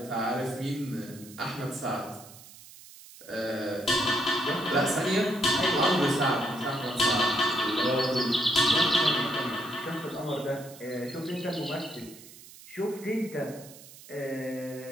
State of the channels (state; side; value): noise; right; hiss, 19 dB below the sound